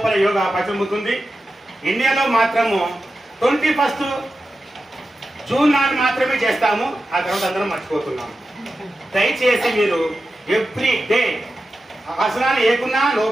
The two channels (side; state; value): both; normal; correlation 0.92